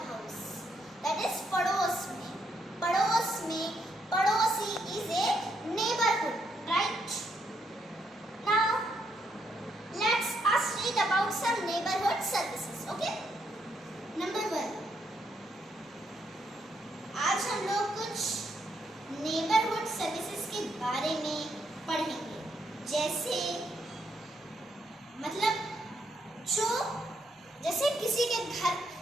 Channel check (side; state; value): both; normal; correlation 0.76